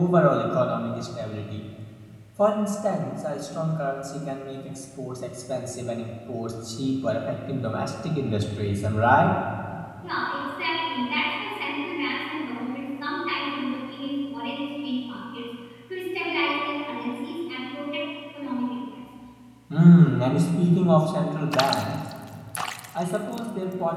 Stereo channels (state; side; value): identical; both; correlation 1.00